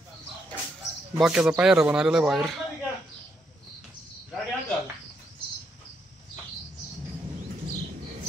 बाक्याचा पायरा बनवलेला आहे बाहेर।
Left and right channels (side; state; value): both; normal; correlation 0.78